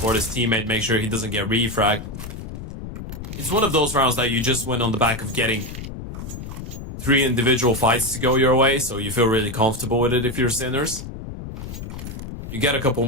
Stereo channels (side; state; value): left; noise; rumble, 9 dB below the sound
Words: his teammate, make sure he doesn't get refragged. It's one of those rounds that you just win on the back of getting 3 individual fights to go your way, so you feel really comfortable with it if you're Sinners. You get a couple